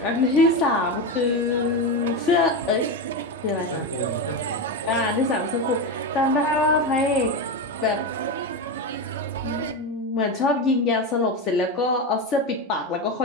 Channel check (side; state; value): both; normal; correlation 0.15